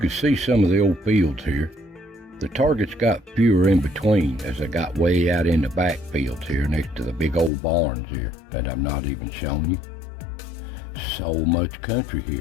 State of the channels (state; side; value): drops out; right; at 7.5 s